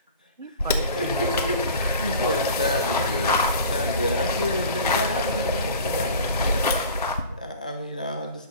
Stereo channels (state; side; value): inverted; both; correlation -0.41